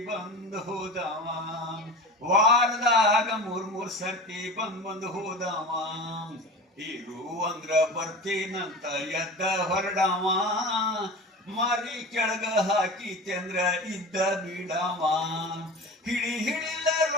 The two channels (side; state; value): both; normal; correlation 0.32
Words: ಬಂದು ಹೋದವ ವಾರದಾಗ ಮೂರ್ ಸರ್ತಿ ಬಂದು ಹೋದವ ಇರು ಅಂದ್ರ ಬರ್ತೀನಂತ ಎದ್ದ ಹೊರಡವ ಮಾರಿ ಕೆಳಗ ಹಾಕಿತೆಂದ್ರ ಇದ್ದ ಬಿಡವ ಹಿಡಿಲ